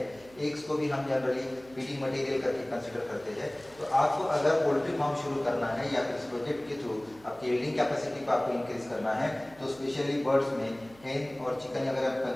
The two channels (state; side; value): noise; right; hum, 25 dB below the sound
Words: एग्स को भी हम जनरली फीडिंग मटेरियल करके कंसिडर करते हैं। तो आपको अगर पोल्ट्री फार्म शुरू करना है या फिर इस प्रोजेक्ट के थ्रू आपकी यील्डिंग कैपेसिटी को आपको इंक्रीज करना है, तो स्पेशली बर्ड्स में हेन और चिकन अगर आप